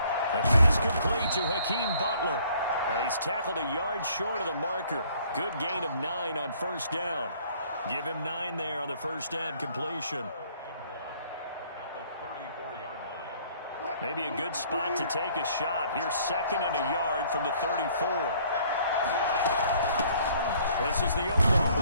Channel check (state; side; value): inverted; both; correlation -0.59